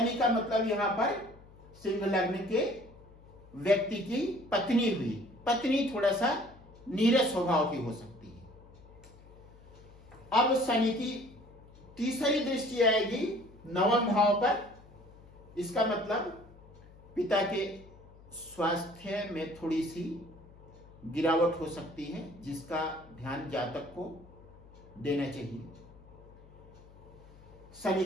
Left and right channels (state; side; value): noise; left; hum, 22 dB below the sound